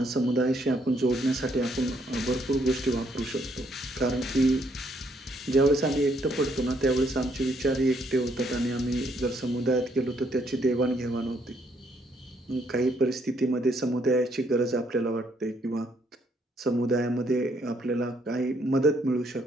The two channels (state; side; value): normal; both; correlation 0.70